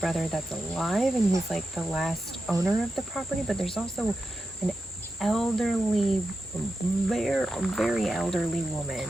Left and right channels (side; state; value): both; normal; correlation 0.89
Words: that's alive and he's like the last owner of the property, but there's also an elderly, very elderly